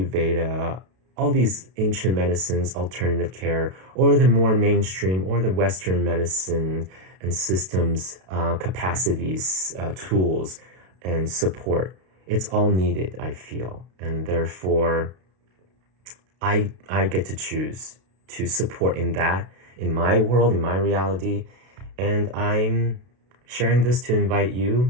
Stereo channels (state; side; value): late; left; 32 ms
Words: all these ancient medicines, alternative care, or the more mainstream or the Western medicine and systems, capacities, tools, and support. It's all needed, I feel. And therefore, I get to choose to support in that, in my world, in my reality. And I'm sharing this to invite